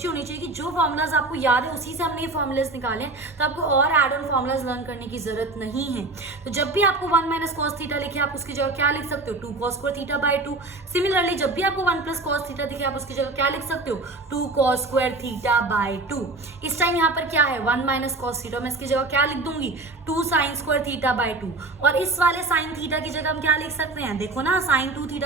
होनी चाहिए कि जो फॉर्मुलाज आपको याद है उसी से हमने ये फॉर्मुलाज निकाले, तो आपको और एड ऑन फॉर्मुलाज लर्न करने की जरूरत नहीं है। तो जब भी आपको 1 माइनस कॉस थीटा लिखे आप उसकी जगह क्या लिख सकते हो, 2 cos square theta by 2। Similarly जब भी आपको 1 प्लस कॉस थीटा दिखे आप उसकी जगह क्या लिख सकते हो, 2 कॉस स्क्वायर थीटा बाय 2। इस टाइम यहाँ पर क्या है 1 माइनस कॉस थीटा, मैं इसकी जगह क्या लिख दूंगी 2 साइन स्क्वायर थीटा बाय 2। और इस वाले साइन थीटा की जगह हम क्या लिख सकते हैं, देखो ना साइन 2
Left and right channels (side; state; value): left; quieter; 3.1 dB